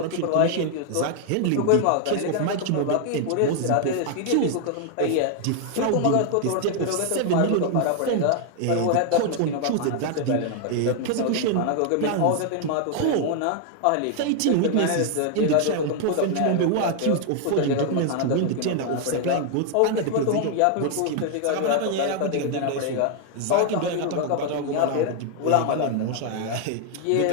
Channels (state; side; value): different; both; correlation 0.00